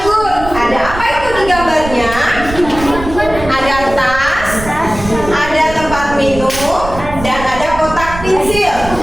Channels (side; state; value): right; noise; rumble, 10 dB below the sound